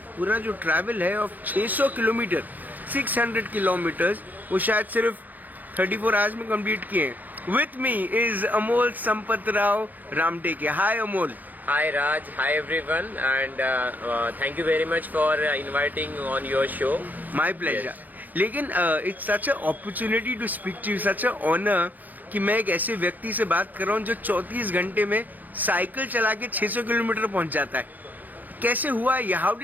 पूरा जो ट्रैवल है ऑफ 600 किलोमीटर, 600 किलोमीटर्स, वो शायद सिर्फ 34 आवर्स में कंप्लीट किए हैं। With me is Amol Sampat Rao Ramteke. Hi Amol. Hi Raj, hi everyone, and thank you very much for inviting on your show. My pleasure. Yes. लेकिन it's such a opportunity to speak to you, such a honour कि मैं एक ऐसे व्यक्ति से बात कर रहा हूँ जो 34 घंटे में साइकिल चला के 600 किलोमीटर पहुँच जाता है। कैसे हुआ ये? How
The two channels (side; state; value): left; late; 0.083 ms